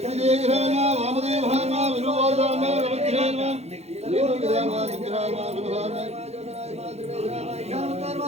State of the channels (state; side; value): late; left; 0.31 ms